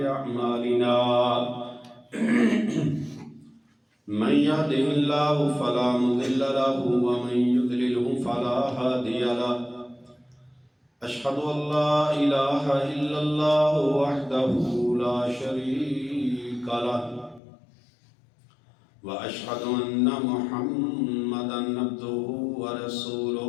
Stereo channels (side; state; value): right; drops out; at 17.4 s